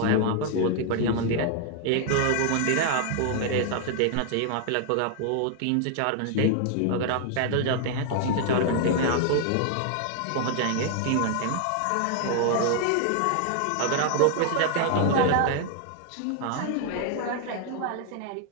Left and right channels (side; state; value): both; different; correlation 0.00